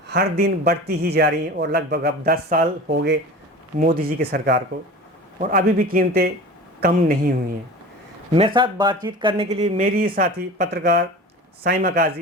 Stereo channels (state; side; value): normal; both; correlation 0.35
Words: हर दिन बढ़ती ही जा रही हैं और लगभग अब 10 साल हो गए मोदी जी की सरकार को, और अभी भी कीमतें कम नहीं हुई हैं। मेरे साथ बातचीत करने के लिए मेरी साथी पत्रकार साइमा